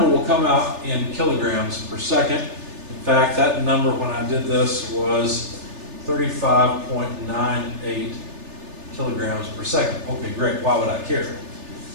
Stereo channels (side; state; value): left; late; 3.4 ms